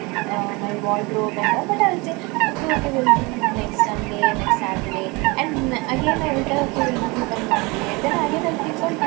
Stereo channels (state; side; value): quieter; left; 26.0 dB